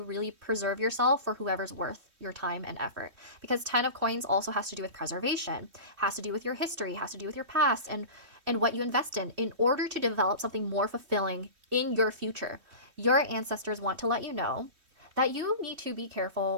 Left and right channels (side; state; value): left; late; 3.2 ms